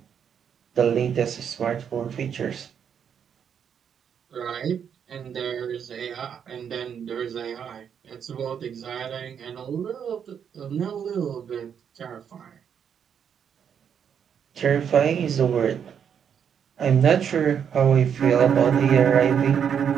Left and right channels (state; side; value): quieter; left; 7.9 dB